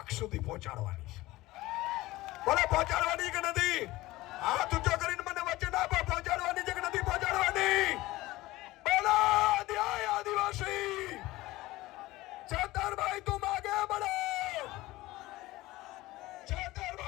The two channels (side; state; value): right; quieter; 18.4 dB